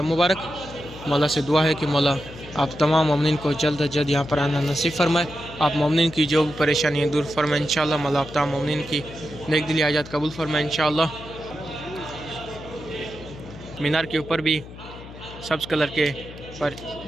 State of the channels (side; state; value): left; noise; hum, 15 dB below the sound